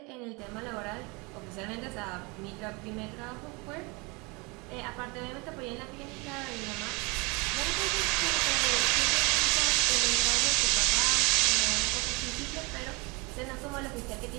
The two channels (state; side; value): quieter; left; 28.0 dB